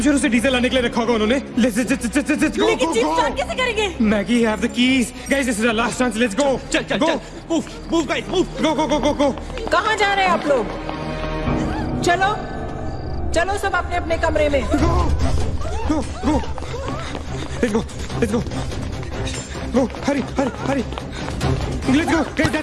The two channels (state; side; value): identical; both; correlation 1.00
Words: श्योर उसे डीजल लाने के लिए रखा होगा उन्होंने। लेट्स गो लेकिन जीप स्टार्ट कैसे करेंगे? Maggie have the keys. Guys this is our last chance. Let's go. चल मूव गाइस मूव। गो। कहाँ जा रहे हैं आप लोग? चलो सब अपने अपने कमरे में। Go let's go Hari let's go guys.